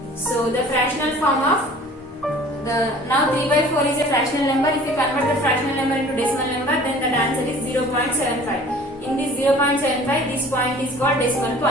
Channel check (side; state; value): both; normal; correlation 0.48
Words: So the fractional form of now 3 by 4 is a fractional number. If you convert the fractional number into decimal number, then the answer is 0.75. In this 0.75, this point is called decimal